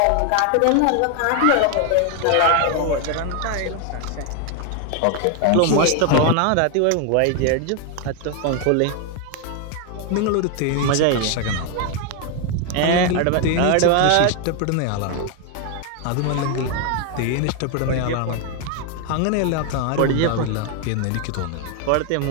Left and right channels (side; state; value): both; different; correlation 0.01